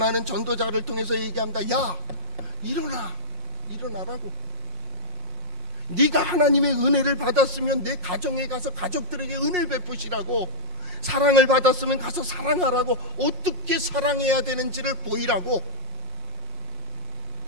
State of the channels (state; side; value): late; left; 5.6 ms